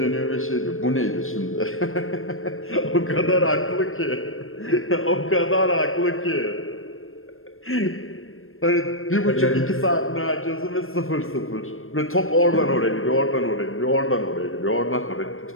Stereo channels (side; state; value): right; late; 0.60 ms